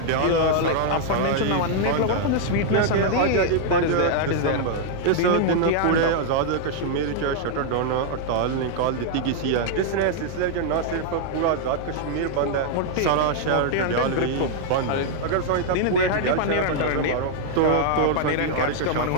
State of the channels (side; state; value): both; different; correlation -0.01